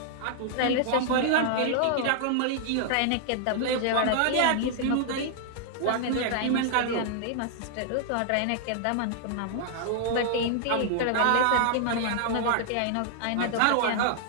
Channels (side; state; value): both; different; correlation -0.01